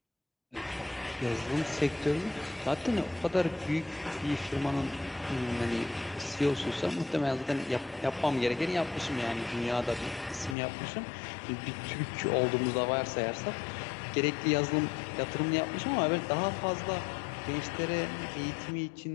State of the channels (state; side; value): drops out; right; at 10.6 s